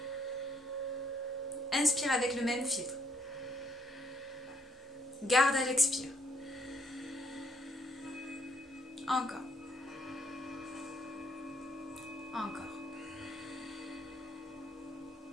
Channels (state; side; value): normal; both; correlation 0.69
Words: Inspire avec le même filtre. Garde à l'expire. Encore. Encore.